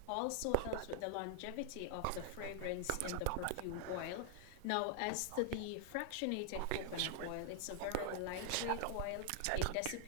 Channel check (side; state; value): both; different; correlation -0.01